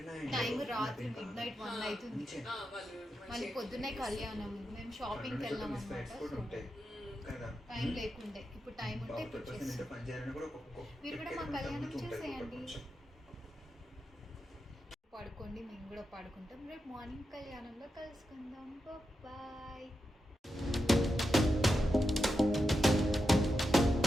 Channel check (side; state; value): both; normal; correlation 0.88